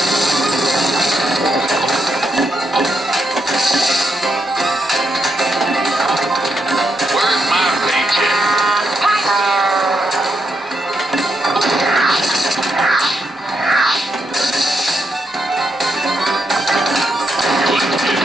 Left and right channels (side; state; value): both; normal; correlation 0.81